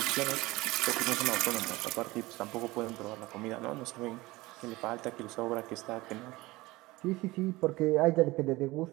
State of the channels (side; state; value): left; quieter; 20.3 dB